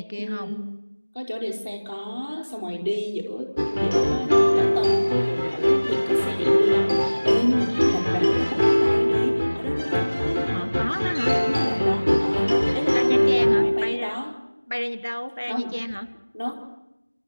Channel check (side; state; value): both; inverted; correlation -1.00